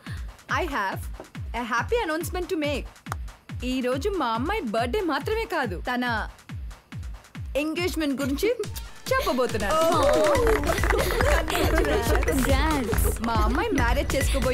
I have a happy announcement to make. ఈ రోజు మా అమ్మాయి బర్త్డే మాత్రమే కాదు, తన ఎంగేజ్మెంట్ గురించి చెప్పబోతున్నాను. మా అమ్మాయి మ్యారేజ్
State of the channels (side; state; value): both; identical; correlation 1.00